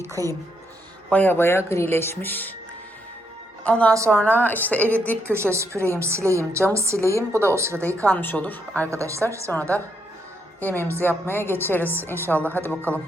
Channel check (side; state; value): both; normal; correlation 0.77